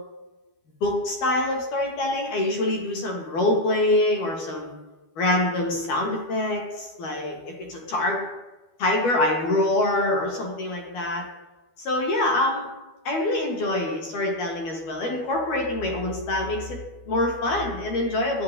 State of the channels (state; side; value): late; right; 12 ms